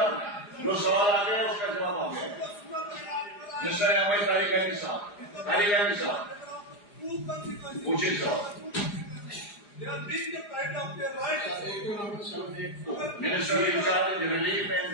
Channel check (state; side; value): late; right; 4.9 ms